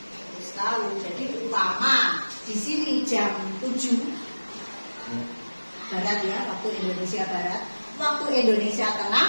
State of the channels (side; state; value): both; inverted; correlation -1.00